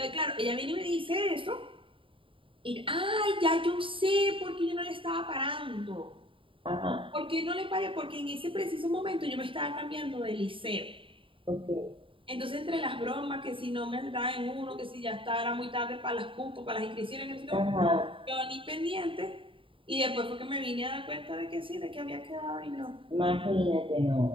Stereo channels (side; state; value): left; late; 0.25 ms